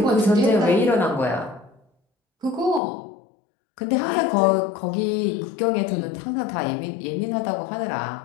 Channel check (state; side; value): drops out; right; at 2.8 s